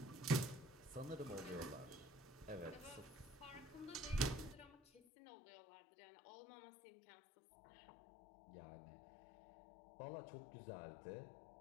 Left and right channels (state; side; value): drops out; right; at 5.0 s